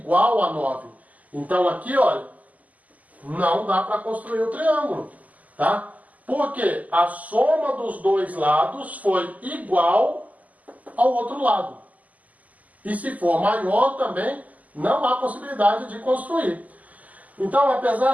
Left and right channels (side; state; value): left; late; 0.076 ms